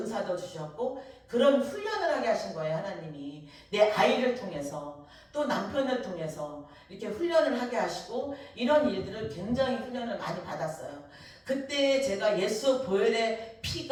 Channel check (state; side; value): identical; both; correlation 1.00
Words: 주셨고, 그런 훈련을 하게 하신 거예요, 하나님이. 내 아이를 통해서, 또 남편을 통해서 이렇게 훈련을 하게 하시고, 이런 일들을 굉장히 훈련을 많이 받았어요. 그때 제가 예수 보혈의